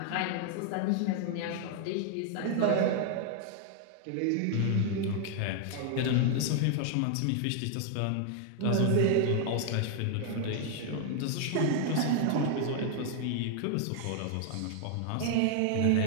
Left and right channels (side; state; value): both; different; correlation 0.00